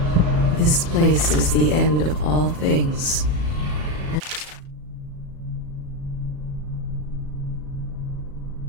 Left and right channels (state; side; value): late; left; 36 ms